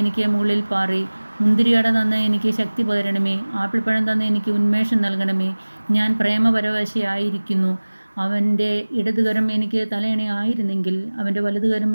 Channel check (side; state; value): both; inverted; correlation -1.00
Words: മുകളിൽ പാറി. മുന്തിരിയട തന്ന് എനിക്ക് ശക്തി പകരണമേ. ആപ്പിൾപ്പഴം തന്ന് എനിക്ക് ഉന്മേഷം നൽകണമേ. ഞാൻ പ്രേമപരവശയായിരിക്കുന്നു. അവൻ്റെ ഇടതുകരം എനിക്ക് തലയണയായിരുന്നെങ്കിൽ, അവൻ്റെ വലതുകരം